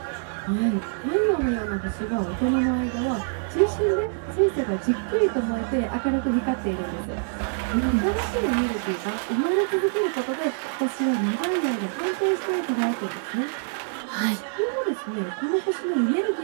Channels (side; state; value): left; silent; digital silence